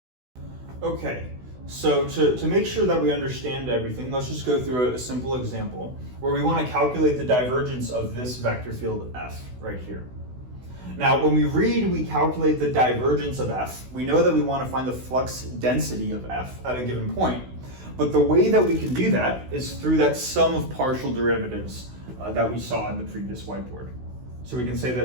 Okay, so to make sure that we understand everything, let's just go through a simple example where we want to calculate the divergence of this vector field f right here. Now, when we calculate the divergence of f, we know that we want to find the flux density of f at a given point. But the way that we can do that is through that sum of partial derivatives that we saw in the previous whiteboard. So we can say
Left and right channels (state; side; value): late; left; 16 ms